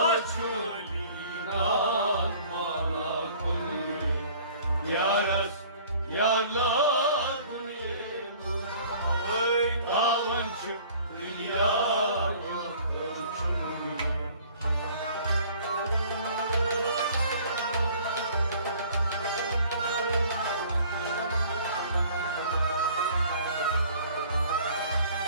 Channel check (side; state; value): both; inverted; correlation -0.51